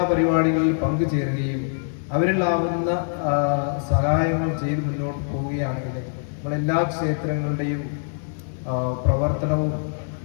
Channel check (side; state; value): right; silent; digital silence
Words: പരിപാടികളിൽ പങ്കുചേരുകയും അവരിലാവുന്ന സഹായങ്ങൾ ചെയ്ത് മുന്നോട്ട് പോവുകയാണെങ്കിൽ നമ്മളെല്ലാ ക്ഷേത്രങ്ങളുടെയും പ്രവർത്തനവും